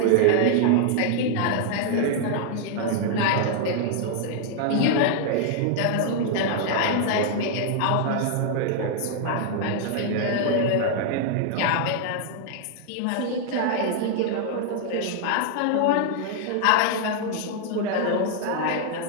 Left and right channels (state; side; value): different; both; correlation 0.00